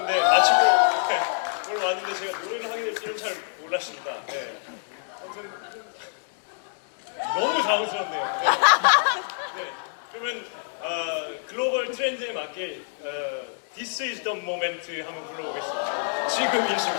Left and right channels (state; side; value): silent; right; digital silence